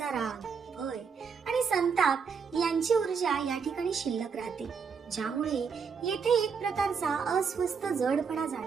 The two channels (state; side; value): quieter; left; 6.0 dB